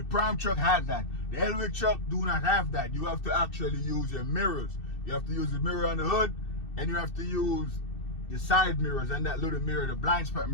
Prime truck has that. The Helwig truck do not have that. You have to actually use your mirrors. You have to use the mirror on the hood, and you have to use your side mirrors and that little mirror, the blind spot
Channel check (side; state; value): right; late; 2.6 ms